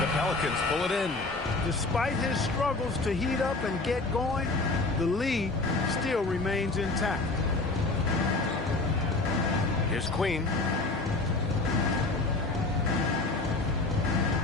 The Pelicans pull it in. Despite his struggles to heat up and get going, the lead still remains intact. Here's Queen.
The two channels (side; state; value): right; quieter; 3.3 dB